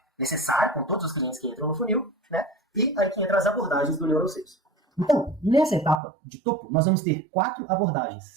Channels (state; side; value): drops out; left; at 6.0 s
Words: necessário com todos os clientes que entram no funil, né? E aí que entram as abordagens do Neural Sales. Então, nessa etapa de topo, nós vamos ter 4 abordagens,